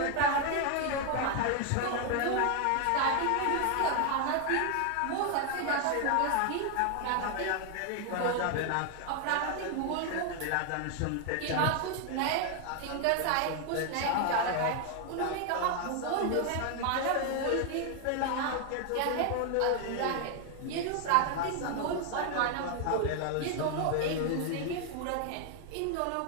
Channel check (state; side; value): different; both; correlation 0.00